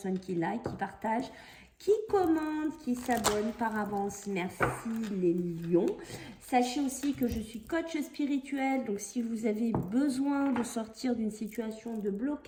qui like, qui partagent, qui commentent, qui s'abonnent par avance. Merci les lions. Sachez aussi que je suis coach spirituel, donc si vous avez besoin de sortir d'une situation de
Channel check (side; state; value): both; identical; correlation 1.00